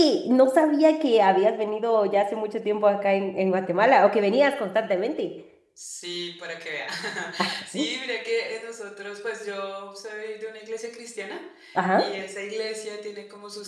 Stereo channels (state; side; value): identical; both; correlation 1.00